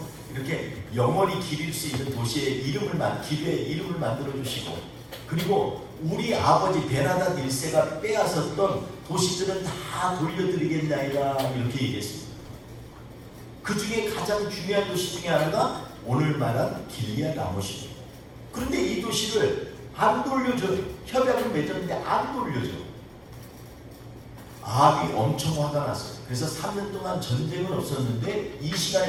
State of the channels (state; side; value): identical; both; correlation 1.00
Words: 이렇게 영원히 기릴 수 있는 도시의 길의 이름을 만들어 주시고, 그리고 우리 아버지 베나닷 1세가 빼앗았던 도시들은 다 돌려드리겠나이다 이렇게 얘기했습니다. 그 중에 가장 중요한 도시 중에 하나가 오늘 말한 길리앗 라못입니다. 그런데 이 도시를 안 돌려줘요. 협약을 맺었는데 안 돌려줘. 아합이 엄청 화가 났어요. 그래서 3년 동안 전쟁은 없었는데 이